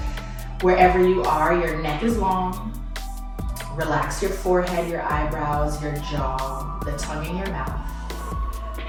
Wherever you are, your neck is long. Relax your forehead, your eyebrows, your jaw, the tongue in your mouth.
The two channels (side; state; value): both; identical; correlation 1.00